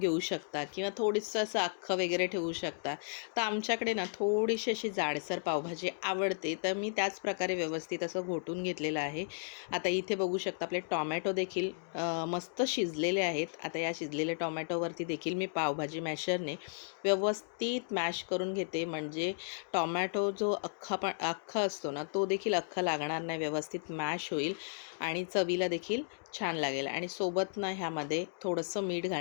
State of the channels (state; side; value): silent; right; digital silence